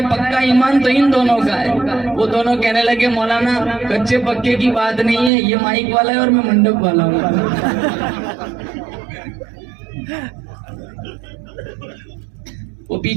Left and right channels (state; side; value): drops out; left; at 5.3 s